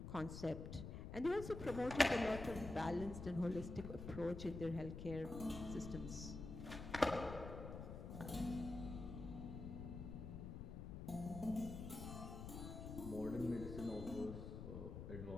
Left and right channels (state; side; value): noise; left; rumble, 7 dB below the sound